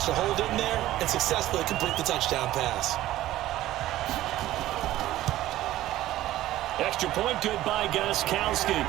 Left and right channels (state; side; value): quieter; left; 14.9 dB